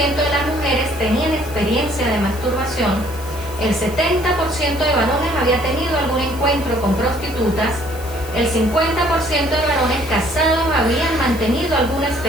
de las mujeres tenían experiencia de masturbación, el 70% de varones había tenido algún encuentro con prostitutas, el 50% de varones casados habían mantenido alguna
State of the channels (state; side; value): noise; left; hiss, 17 dB below the sound